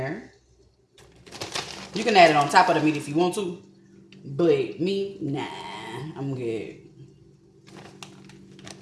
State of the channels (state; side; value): identical; both; correlation 1.00